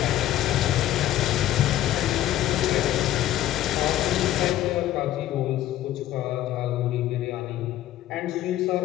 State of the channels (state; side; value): quieter; right; 13.4 dB